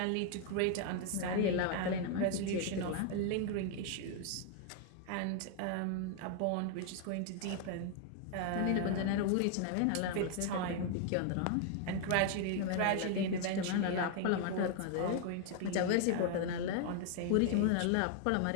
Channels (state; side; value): different; both; correlation 0.00